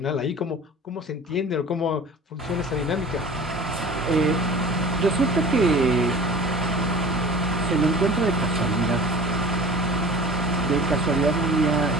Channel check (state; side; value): normal; both; correlation 0.41